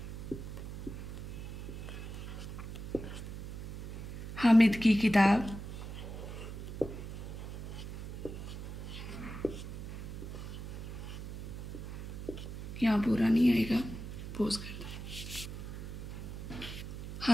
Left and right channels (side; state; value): right; noise; hum, 8 dB below the sound